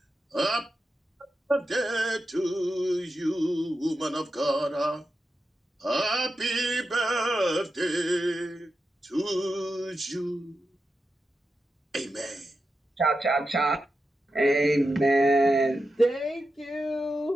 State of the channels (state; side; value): normal; both; correlation 0.89